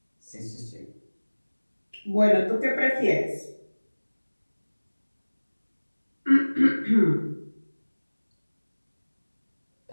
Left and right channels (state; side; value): inverted; both; correlation -1.00